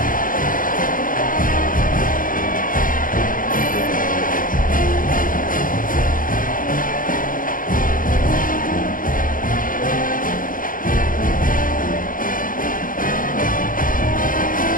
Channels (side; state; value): right; late; 0.40 ms